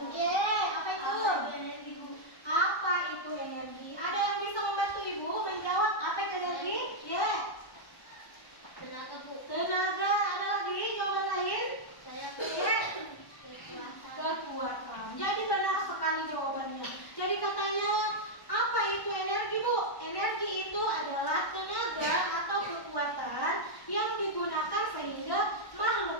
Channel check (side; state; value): right; late; 1.1 ms